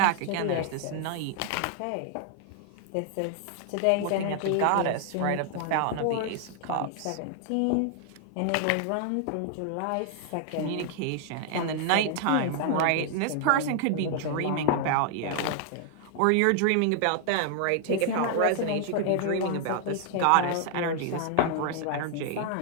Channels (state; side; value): different; both; correlation 0.00